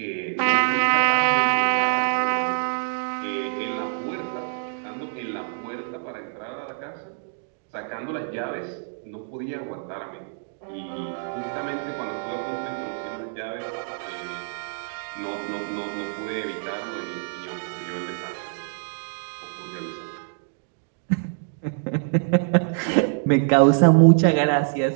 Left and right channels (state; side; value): silent; left; digital silence